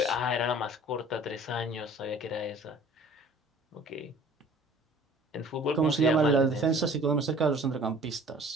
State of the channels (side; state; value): both; normal; correlation 0.49